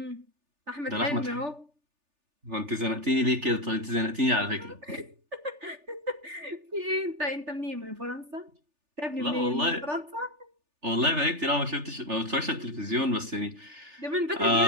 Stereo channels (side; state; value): left; late; 3.4 ms